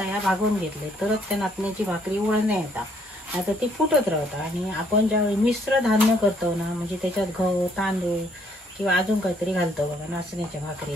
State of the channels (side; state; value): both; normal; correlation 0.67